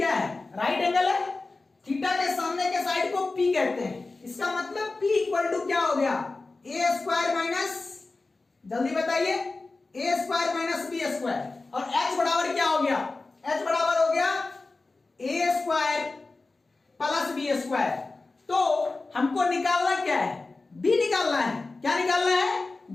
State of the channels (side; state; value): right; quieter; 3.5 dB